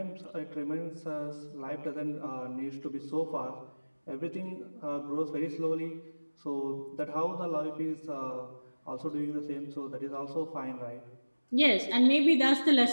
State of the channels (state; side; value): inverted; both; correlation -1.00